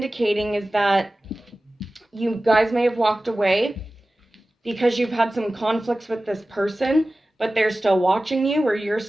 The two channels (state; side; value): normal; both; correlation 0.96